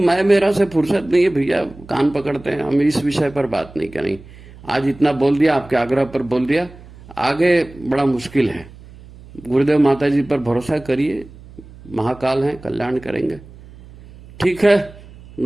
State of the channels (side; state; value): right; noise; hum, 20 dB below the sound